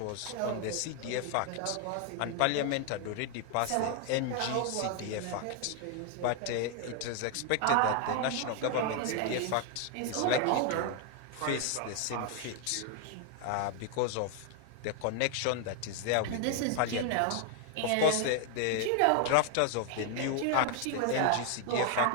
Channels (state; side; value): different; both; correlation 0.00